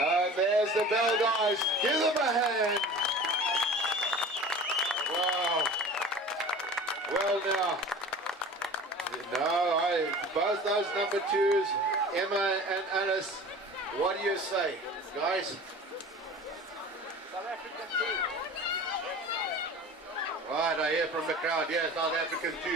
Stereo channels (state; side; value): normal; both; correlation 0.40